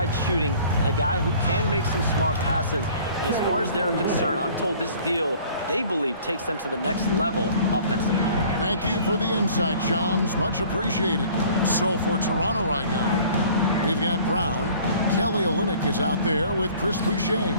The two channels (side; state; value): both; inverted; correlation -0.51